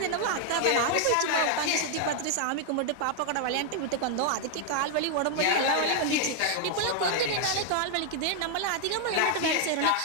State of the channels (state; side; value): different; both; correlation 0.00